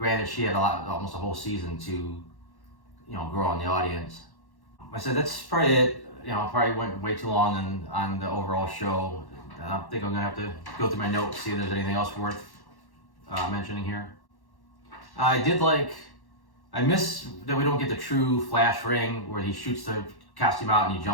she had almost a whole season to, grow on the audience. I said that's probably it. Probably went way too long on the overall show. I think I'm gonna have to go through my notes, see if there's anything else worth mentioning here. I miss that we don't get the true Flash ring where he shoots the costume out and he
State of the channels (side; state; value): right; late; 1.1 ms